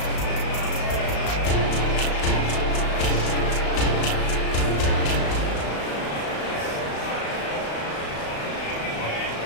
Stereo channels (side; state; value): right; late; 35 ms